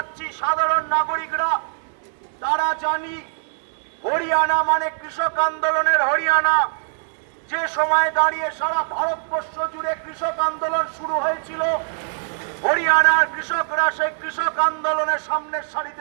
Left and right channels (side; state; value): left; silent; digital silence